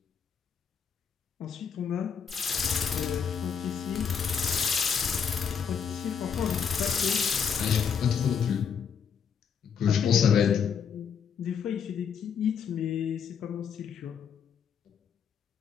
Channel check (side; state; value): right; quieter; 7.0 dB